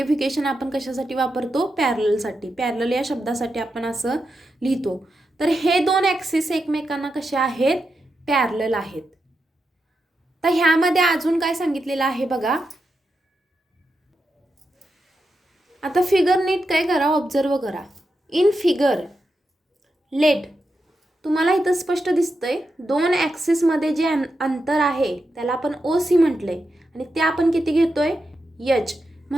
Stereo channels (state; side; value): normal; both; correlation 0.87